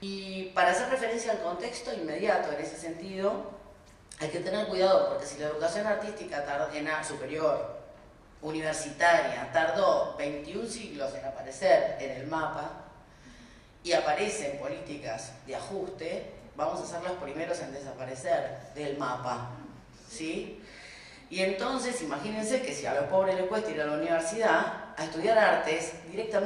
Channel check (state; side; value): identical; both; correlation 1.00